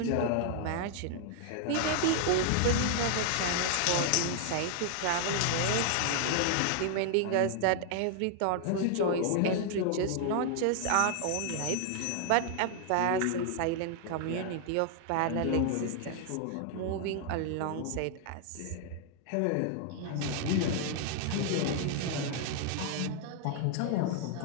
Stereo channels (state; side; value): different; both; correlation 0.00